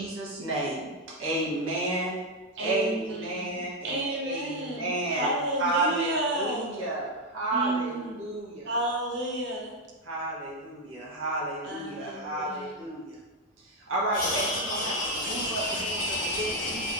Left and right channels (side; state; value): both; normal; correlation 0.05